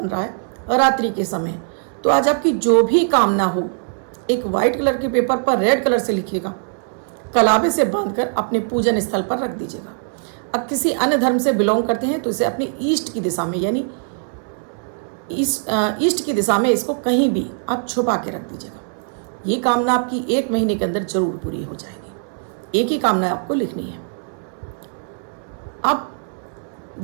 रहा है रात्रि के समय, तो आज आपकी जो भी कामना हो एक वाइट कलर के पेपर पर रेड कलर से लिखिएगा, कलावे से बांधकर अपने पूजन स्थल पर रख दीजिएगा। अब किसी अन्य धर्म से बिलोंग करते हैं तो इसे अपनी ईस्ट की दिशा में, यानी ईस्ट की दिशा में इसको कहीं भी आप छुपा के रख दीजिएगा। ये कामना आपकी 1 महीने के अंदर जरूर पूरी हो जाएगी। एक ही कामना आपको लिखनी है। अब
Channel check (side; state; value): left; silent; 65 dB below the other